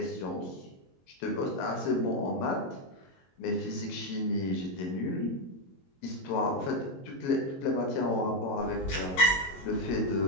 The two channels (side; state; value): right; late; 22 ms